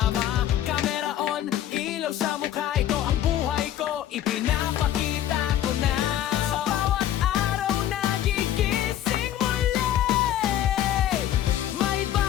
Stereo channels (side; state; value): right; quieter; 11.7 dB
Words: Camera on, ilaw sa mukha. Ito ang buhay ko, ipinapakita ko na. Sa bawat araw nagigising muli, may